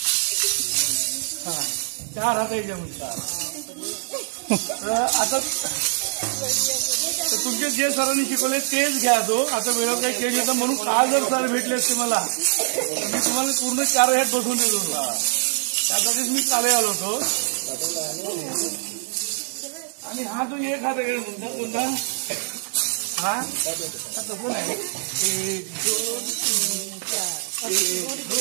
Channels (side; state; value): left; silent; digital silence